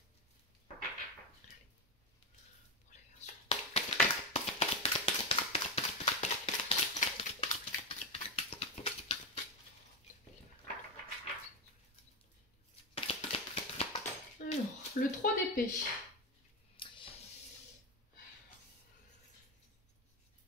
Alors, le 3 d'épée.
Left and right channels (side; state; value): both; normal; correlation 0.12